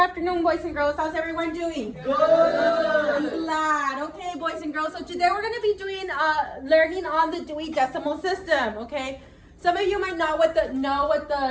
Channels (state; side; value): identical; both; correlation 1.00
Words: boys and girls. How's everyone doing? Good. I'm glad. Okay, boys and girls. So today we're going to be doing learning on the Dewey Decimal System. Okay, some of you might know what